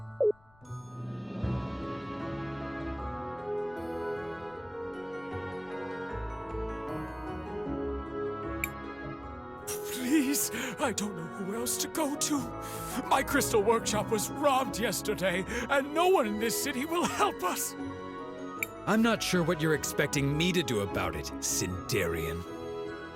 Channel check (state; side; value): noise; left; rumble, 30 dB below the sound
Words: Please, I don't know who else to go to. My crystal workshop was robbed yesterday, and no one in this city will help us. I'm not sure what you're expecting me to do about it, Sindarian.